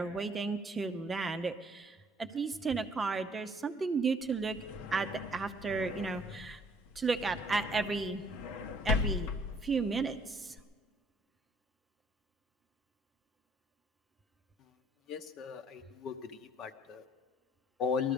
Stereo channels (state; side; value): normal; both; correlation 0.61